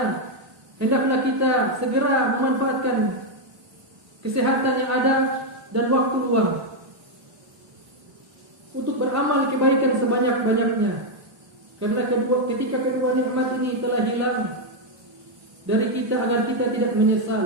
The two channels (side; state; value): left; late; 1.1 ms